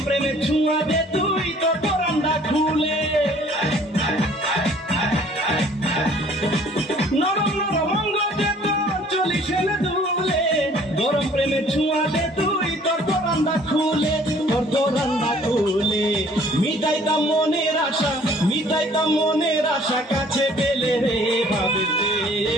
প্রেমে ছুঁয়া দে তুই তো পরান্ডা খুলে, নরম নরম অঙ্গ দে তোর চলিস এলে দুলে। গরম প্রেমে ছুঁয়া দে তুই তোর পরান্ডা খুলে, তোর পরান্ডা খুলে। মিটাইতাম মনের আশা, মিটাইতাম মনের আশা কাছে পেলে রে, ভাবের চেয়ে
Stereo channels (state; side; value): normal; both; correlation 0.55